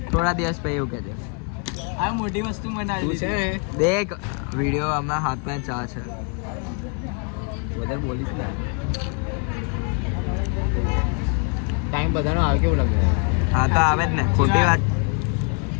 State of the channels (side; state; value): right; quieter; 37.4 dB